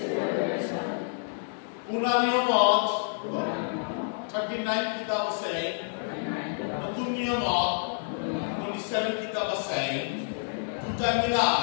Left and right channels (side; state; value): right; silent; digital silence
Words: Unaniyamot 39 kitab আছে Nutun-niyamot 27 kitab আছে দুটা